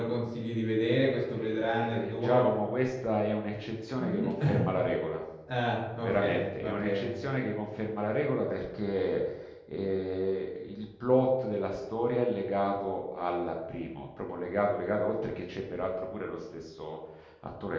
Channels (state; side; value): identical; both; correlation 1.00